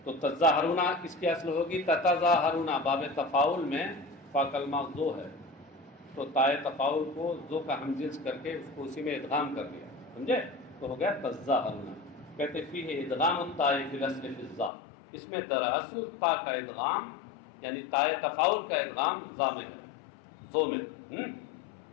تو تظاہرون اس کی اصل ہوگی تتظاہرون. باب تفاعل میں فا کلمہ ذو ہے تو تائے تفاعل کو ذو کا ہم جنس کر کے اس کو اسی میں ادغام کر دیا، سمجھے؟ تو ہو گیا تظاہرون. کہتے فیہ ادغام الطاء فی الاصل فی الظا. اس میں دراصل تا کا ادغام یعنی تائے تفاعل کا ادغام ذا میں ہے، ذو میں.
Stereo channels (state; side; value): drops out; right; at 14.7 s